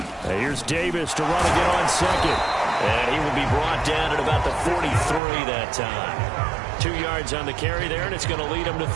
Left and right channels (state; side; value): drops out; left; at 5.2 s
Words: Here's Davis to run again on 2nd. And he will be brought down at about the 43 that time. 2 yards on the carry there, and it's going to lead him to